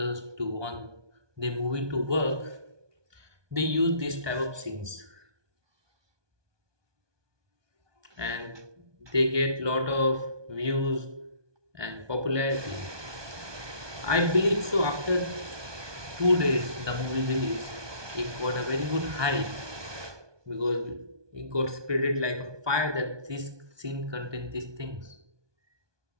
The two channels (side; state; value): left; late; 1.2 ms